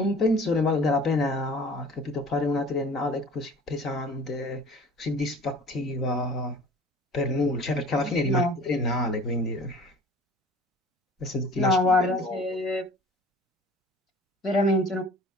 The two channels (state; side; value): normal; both; correlation 0.45